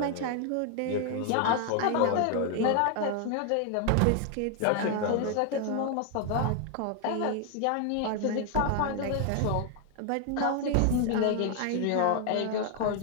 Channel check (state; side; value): different; both; correlation 0.00